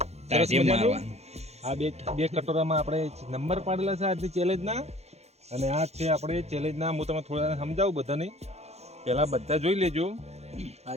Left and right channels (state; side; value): late; left; 0.31 ms